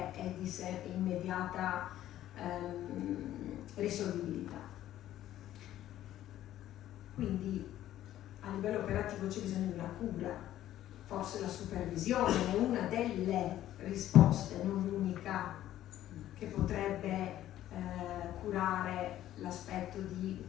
è di sé immediata risolvibilità. Quindi a livello operativo c'è bisogno di una cura, forse la supervisione è una delle risposte, non l'unica, che potrebbe curare l'aspetto di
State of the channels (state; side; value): quieter; right; 13.0 dB